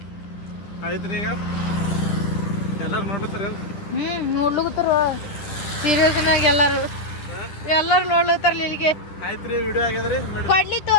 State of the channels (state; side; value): late; right; 10 ms